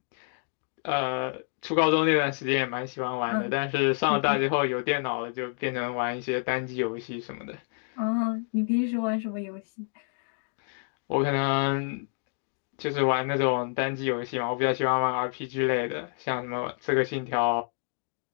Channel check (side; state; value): right; silent; 59 dB below the other